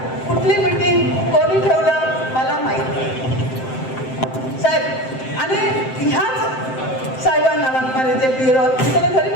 कुठली मीटिंग कोणी ठेवलं मला माहिती साहेब. आणि ह्याच साहेबांना वाकमारे जे BLO मी त्याला घरी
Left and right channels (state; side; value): late; right; 7.7 ms